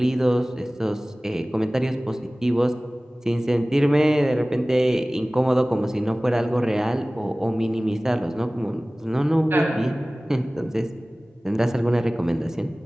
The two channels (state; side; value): normal; both; correlation 0.98